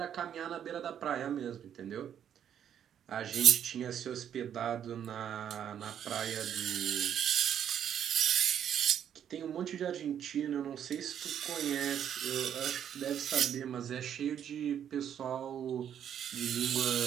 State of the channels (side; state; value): left; quieter; 9.3 dB